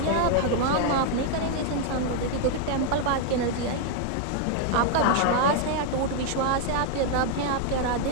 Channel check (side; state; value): both; different; correlation 0.00